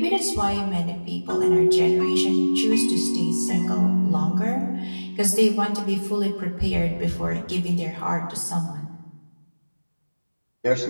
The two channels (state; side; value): inverted; both; correlation -1.00